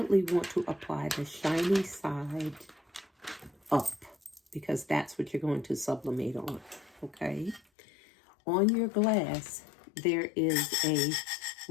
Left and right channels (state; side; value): drops out; right; at 7.6 s